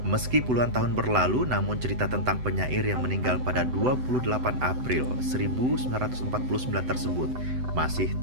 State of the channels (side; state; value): left; late; 7.9 ms